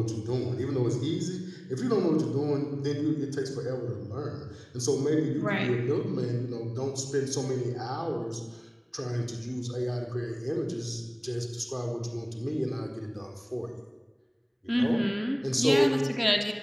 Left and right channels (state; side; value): identical; both; correlation 1.00